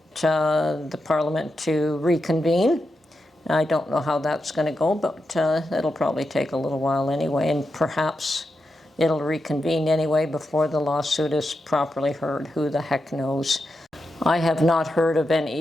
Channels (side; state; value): both; normal; correlation 0.87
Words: the Parliament to reconvene. I don't know how that's going to go, but it'll probably take a little while anyway, and perhaps it'll reconvene anyway before the lawsuit is properly heard. Who the heck knows? I have not heard of